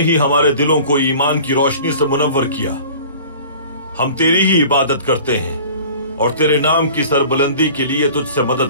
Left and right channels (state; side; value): inverted; both; correlation -0.44